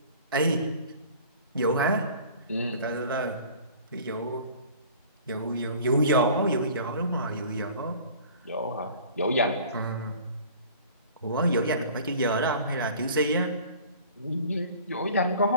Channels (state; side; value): inverted; both; correlation -0.46